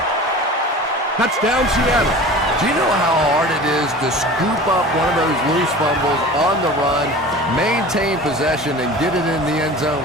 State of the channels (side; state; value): both; normal; correlation 0.38